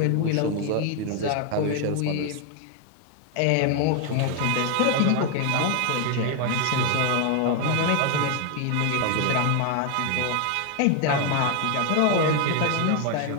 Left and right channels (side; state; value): both; different; correlation 0.01